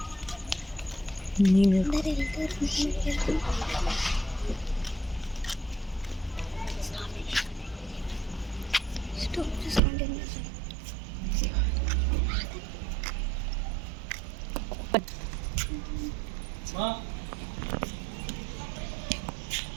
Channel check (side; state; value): left; drops out; at 9.8 s